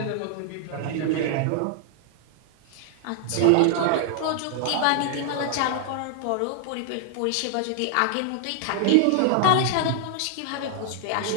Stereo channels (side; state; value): both; different; correlation -0.01